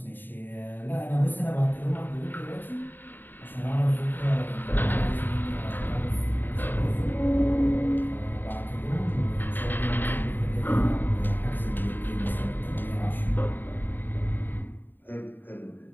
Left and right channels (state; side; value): late; right; 0.092 ms